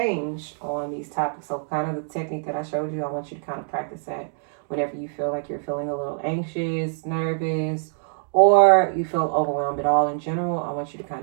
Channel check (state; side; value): silent; left; digital silence